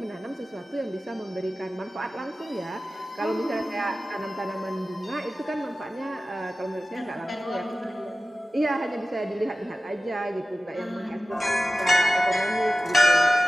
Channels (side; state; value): both; normal; correlation 0.94